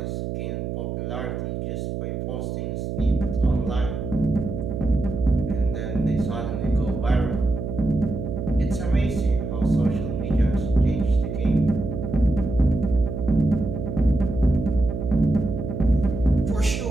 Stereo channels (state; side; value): noise; right; hum, 4 dB below the sound